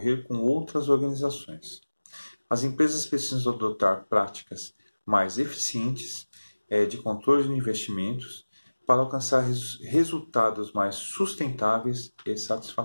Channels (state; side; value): inverted; both; correlation -1.00